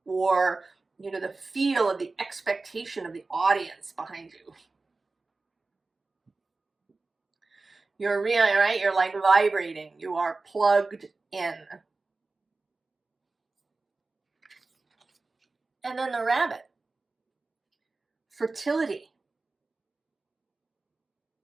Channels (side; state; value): left; quieter; 3.6 dB